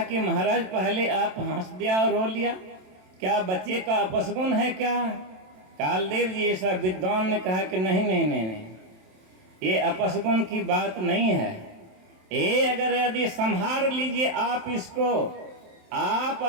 कि महाराज पहले आप हंस दिया और रो लिया, क्या बच्चे का अपसगुन है क्या? कालदेव जी ऐसा विद्वान ने कहा कि नहीं नहीं नहीं नहीं, ये अपसगुन की बात नहीं है। ये अगर यदि संभाल लीजिए आप इसको, आप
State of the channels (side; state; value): left; late; 27 ms